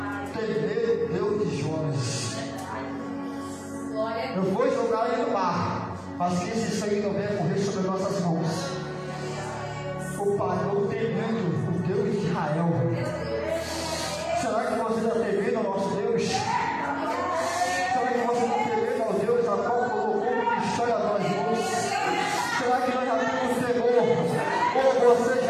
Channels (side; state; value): both; identical; correlation 1.00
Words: Temer Deus de Jonas. Eu vou jogar ele no mar, mas que esse sangue não venha correr sobre nossas mãos. O pagão temendo o Deus de Israel. Será que você está temendo ao nosso Deus? Será que você está temendo ao Deus a qual colocou uma história a nós mãos? Será que nós já temos temor? Ou você